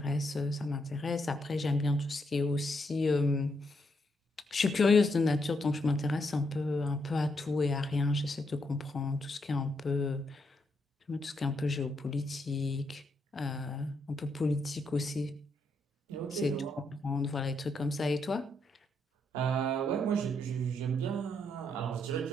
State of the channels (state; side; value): normal; both; correlation 0.78